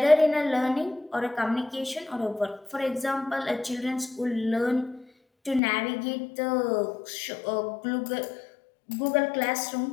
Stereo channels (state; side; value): drops out; right; at 5.6 s